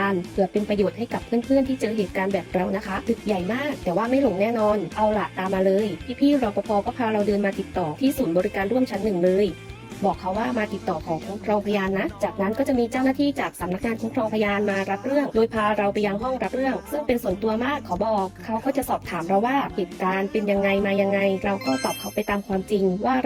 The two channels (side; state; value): both; identical; correlation 1.00